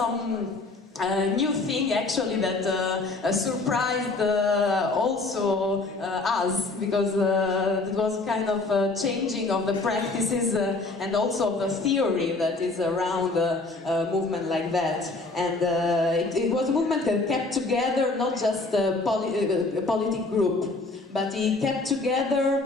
new thing actually that surprised also us, because it was kind of a changing of the practices and also of the theory that is around a movement like that. And it was a movement that kept together not just a politic group, but he kept together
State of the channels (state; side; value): quieter; right; 3.3 dB